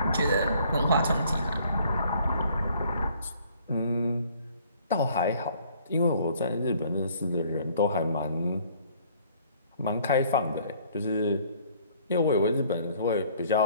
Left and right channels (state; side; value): inverted; both; correlation -0.58